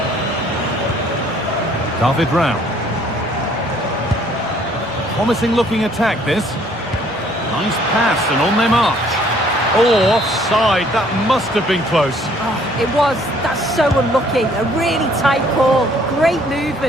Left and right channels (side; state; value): both; normal; correlation 0.61